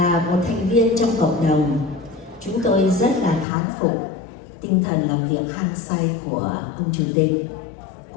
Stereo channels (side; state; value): right; drops out; at 3.5 s